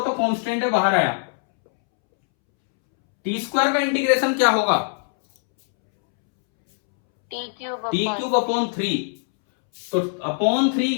तो कांस्टेंट है, बाहर आया, टी स्क्वायर का इंटीग्रेशन क्या होगा? टी क्यूब अपॉन 3, तो अपॉन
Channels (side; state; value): right; silent; 65 dB below the other